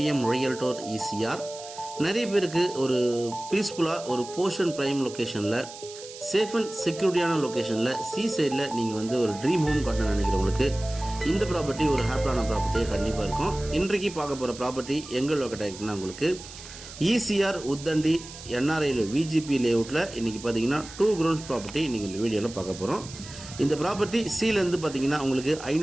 ரியல்டோர் ஈசிஆர். நிறைய பேருக்கு ஒரு பீஸ்ஃபுல்லாக ஒரு போர்ஷன் ப்ரைம் லொக்கேஷனில் சேஃப் அண்ட் செக்யூரிட்டியான லொக்கேஷனில் சி சைடில் நீங்கள் ஒரு ட்ரீம் ஹோம் கட்டணும்னு நினைக்கிறவங்களுக்கு இந்த ப்ராப்பர்ட்டி ஒரு ஹாப்பியான ப்ராப்பர்ட்டியாக கண்டிப்பாக இருக்கும். இன்றைக்கு பார்க்க போகிற ப்ராப்பர்ட்டி எங்கே லொக்கேட் ஆகிருக்குன்னா உங்களுக்கு ஈசிஆர் உத்தண்டி என்ஆர்ஐயில் விஜிபி லேஅவுட்டில் இன்றைக்கி பார்த்தீங்கன்னா 2 grounds ப்ராப்பர்ட்டி இன்றைக்கி இந்த வீடியோவில் பார்க்க போகிறோம். இந்த ப்ராப்பர்ட்டி சீலேருந்து பார்த்தீங்கன்னா உங்களுக்கு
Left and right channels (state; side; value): noise; right; hiss, 15 dB below the sound